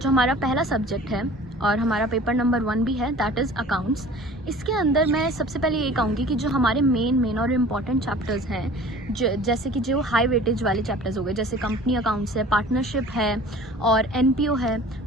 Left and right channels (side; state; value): both; normal; correlation 0.45